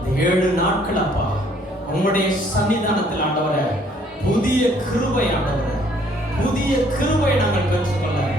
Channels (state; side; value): normal; both; correlation 0.62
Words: 7 நாட்கள் அப்பா உம்முடைய சன்னிதானத்தில் ஆண்டவரே, புதிய கிருபை ஆண்டவரே, புதிய கிருபை நாங்கள் பெற்றுக்கொள்ள,